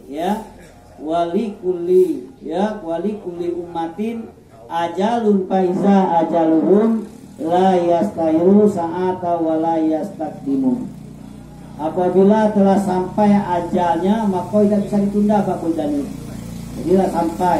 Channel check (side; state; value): both; identical; correlation 1.00